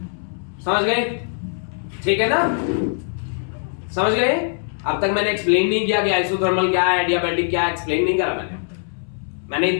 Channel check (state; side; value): silent; right; 63 dB below the other